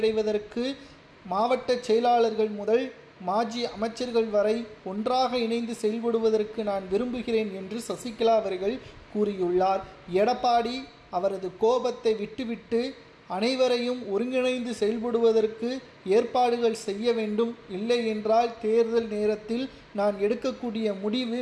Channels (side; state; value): both; identical; correlation 1.00